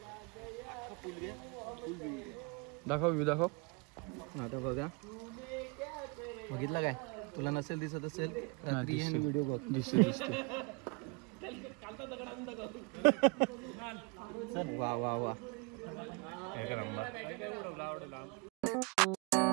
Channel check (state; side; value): quieter; left; 30.9 dB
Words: दाखव व्ह्यू दाखव. आता बघा बघितलं काय तुला नसेल दिसत असेल रात्री व्हिडिओ बघ. दिसते वा वा वा.